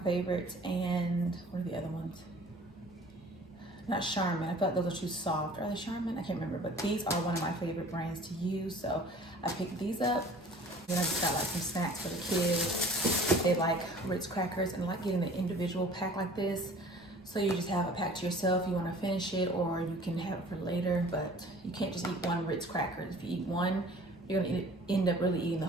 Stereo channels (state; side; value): normal; both; correlation 0.48